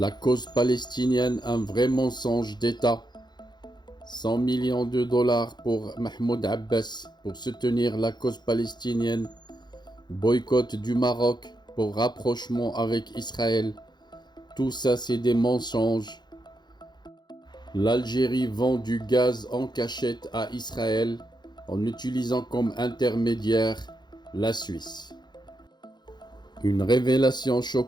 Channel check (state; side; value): late; right; 0.21 ms